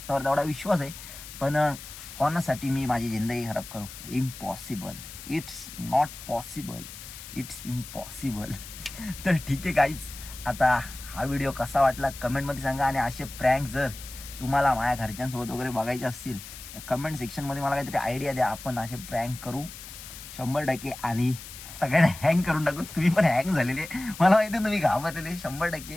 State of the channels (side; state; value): left; noise; hiss, 13 dB below the sound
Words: तेवढा विश्वास आहे. पण कोणासाठी मी माझी जिंदगी खराब करू. Impossible. It's not possible. It's impossible. तर ठीक आहे गाईज आता हा व्हिडिओ कसा वाटला कमेंटमध्ये सांगा. आणि असे प्रँक जर तुम्हाला माझ्या घरच्यांसोबत वगैरे बघायचे असतील तर कमेंट सेक्शनमध्ये मला काहीतरी आयडिया द्या. आपण असे प्रँक करू 100%. आणि सगळ्यांना हँग करून टाकू. तुम्ही पण हँग झालेले मला माहिती तुम्ही घाबरलेले 100%.